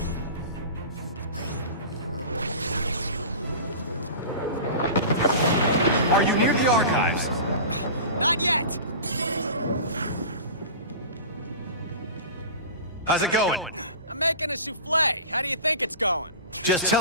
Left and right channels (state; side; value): inverted; both; correlation -0.34